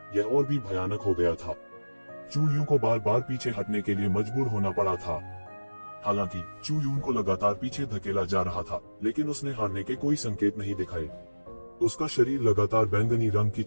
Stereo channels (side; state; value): both; inverted; correlation -1.00